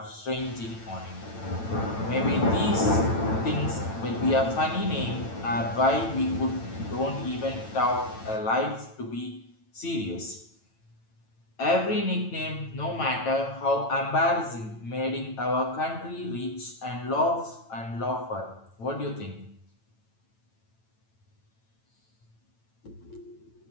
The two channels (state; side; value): late; right; 9.0 ms